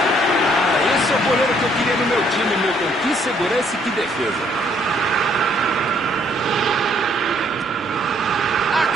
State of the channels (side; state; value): both; normal; correlation 0.66